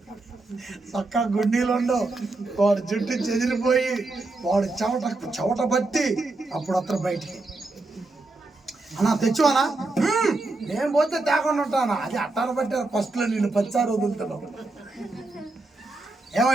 చక్కగా గుండీలు ఉండవు, వాడు జుట్టు చెదిరిపోయి వాడు చెవట బట్టి అప్పుడు అతను బయటికి అన్నా తెచ్చువానా, నేను పోతే తేకుండా ఉంటానా, అది అట్టారు బట్టి ఫస్ట్లో నేను 10 సార్లు వదులుతున్నావు.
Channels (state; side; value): quieter; left; 3.2 dB